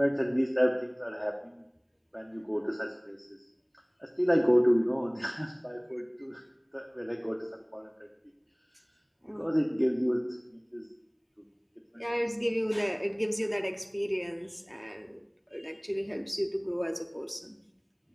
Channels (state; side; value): identical; both; correlation 1.00